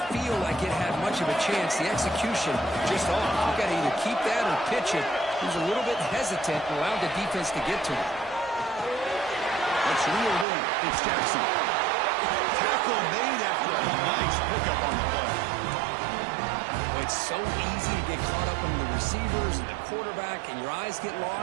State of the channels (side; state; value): left; drops out; at 10.5 s